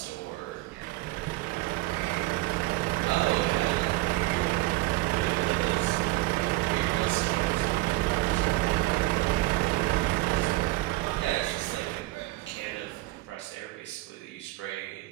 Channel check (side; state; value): left; quieter; 20.1 dB